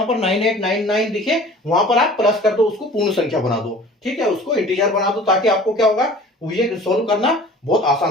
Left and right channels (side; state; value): both; normal; correlation 0.45